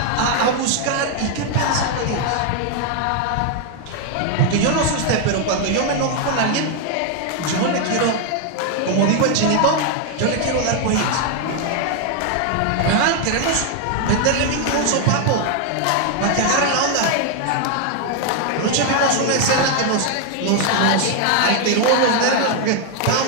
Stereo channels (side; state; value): both; different; correlation 0.00